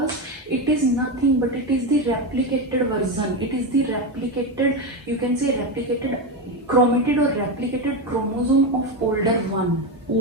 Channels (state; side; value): normal; both; correlation 0.13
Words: it is nothing but it is the replicated version. It is the replicated, you can say replicated chromatid or replicated chromosome of older one,